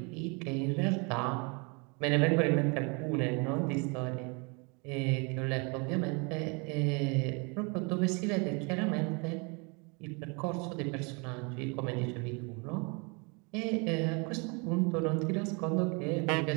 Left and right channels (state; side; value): quieter; left; 31.8 dB